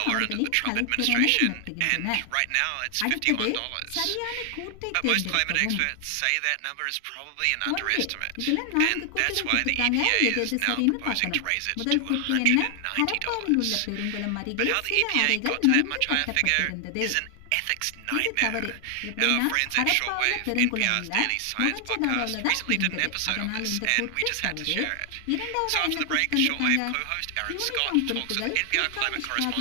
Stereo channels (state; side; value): different; both; correlation 0.00